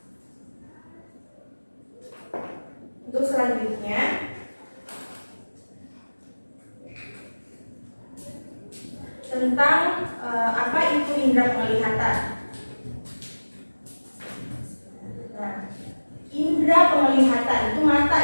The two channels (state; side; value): inverted; both; correlation -1.00